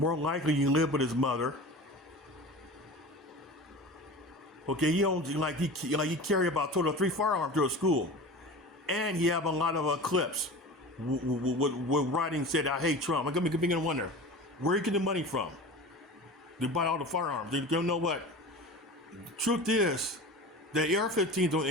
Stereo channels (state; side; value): normal; both; correlation 0.34